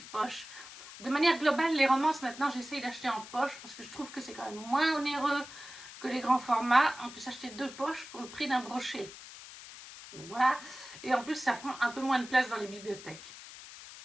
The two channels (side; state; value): left; noise; hiss, 15 dB below the sound